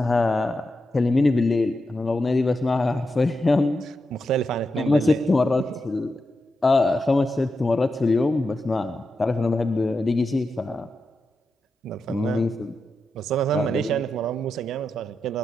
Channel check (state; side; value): normal; both; correlation 0.88